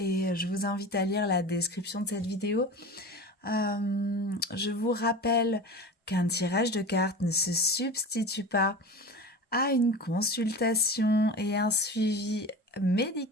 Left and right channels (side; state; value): both; normal; correlation 0.32